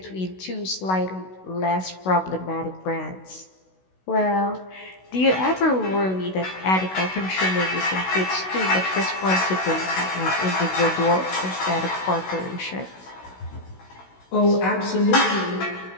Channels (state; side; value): late; right; 16 ms